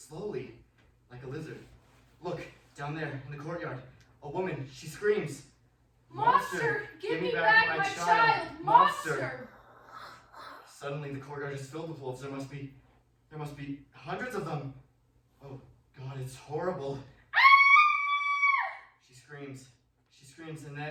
like a lizard. Look, down there in the courtyard. A woman, she screams. Monster! Give me back my child! Monster! Suddenly the courtyard is filled with wolves. There must be hundreds of them. Oh God, it's horrible. She screams, and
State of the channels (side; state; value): both; identical; correlation 1.00